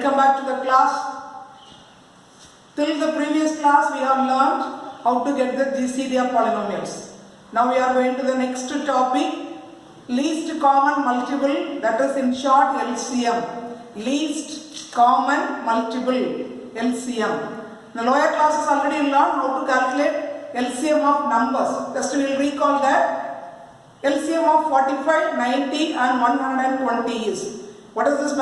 back to the class. Till the previous class we have learned how to get the GCD of polynomials. Now we are going to the next topic, least common multiple, that is in short LCM. Least common multiple, LCM. In the lower classes already learned how to calculate LCM of numbers. Just we will recall that LCM of 45, 90 and 120 is. What is this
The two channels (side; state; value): both; identical; correlation 1.00